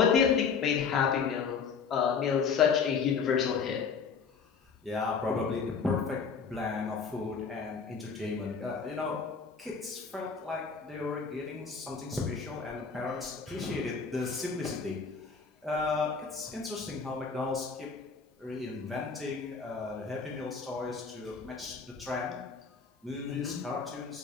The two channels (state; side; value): quieter; right; 5.6 dB